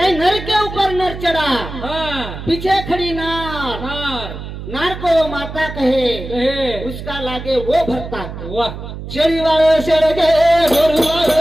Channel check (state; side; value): noise; right; hum, 10 dB below the sound